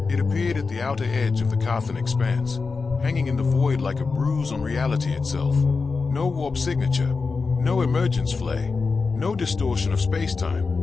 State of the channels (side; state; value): right; quieter; 4.5 dB